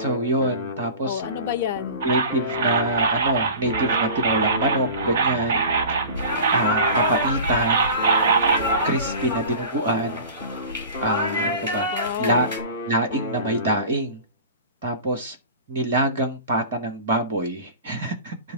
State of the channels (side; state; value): both; inverted; correlation -0.38